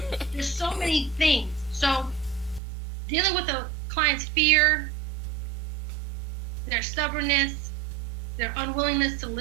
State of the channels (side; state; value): left; drops out; at 2.6 s